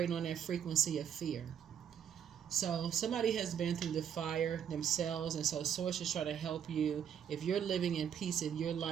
on that frequency of fear. So somebody has been through the fire themselves, and so Source is trying to help you. If you're living in peace in your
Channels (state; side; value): quieter; left; 8.6 dB